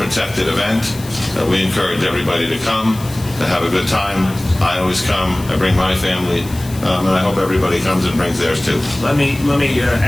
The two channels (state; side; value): noise; left; hiss, 18 dB below the sound